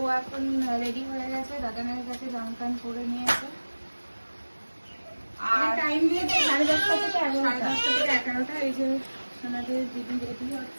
এখন রেডি হয়ে গেছে, দাদানের কাছে জামা প্যান্ট পরে নিয়েছে। আর টাইম দিয়েছে 10:30 থেকে 11টা। এই যে সোনাদের দিদি রেডি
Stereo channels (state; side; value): inverted; both; correlation -1.00